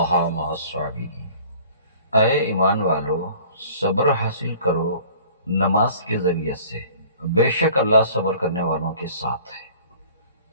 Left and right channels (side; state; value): both; inverted; correlation -0.49